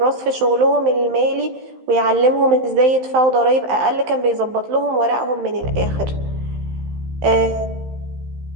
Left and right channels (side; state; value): left; late; 15 ms